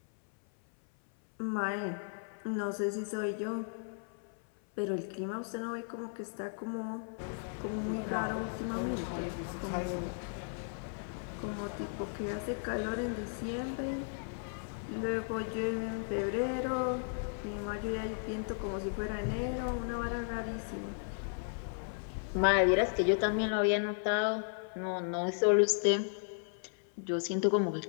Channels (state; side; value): silent; right; 54 dB below the other